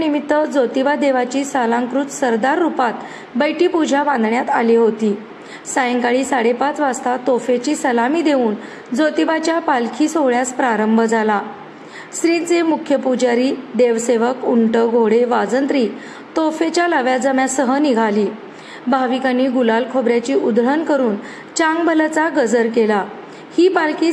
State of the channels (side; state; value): both; identical; correlation 1.00